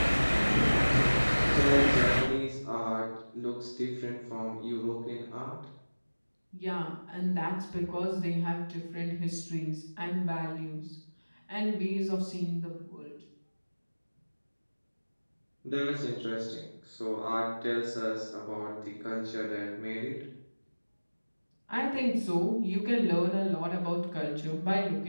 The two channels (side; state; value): both; inverted; correlation -1.00